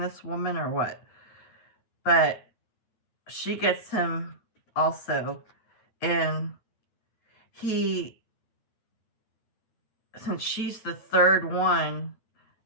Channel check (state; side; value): late; right; 9.1 ms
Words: woman or what, but she gets him also. And he, since she's the third one,